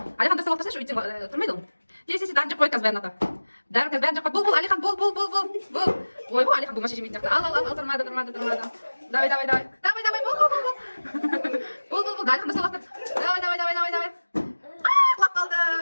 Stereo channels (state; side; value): inverted; both; correlation -1.00